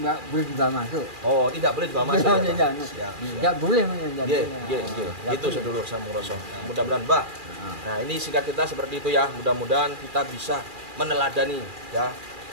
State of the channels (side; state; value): left; late; 2.4 ms